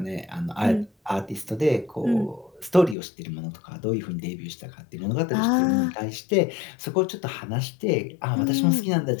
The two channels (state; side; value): drops out; right; at 3.0 s